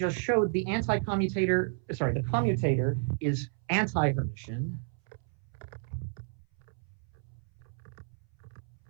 showed, the commutator is anti-Hermitian.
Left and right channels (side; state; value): left; silent; 57 dB below the other